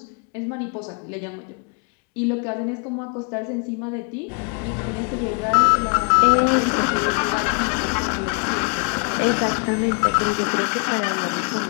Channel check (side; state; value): right; quieter; 39.0 dB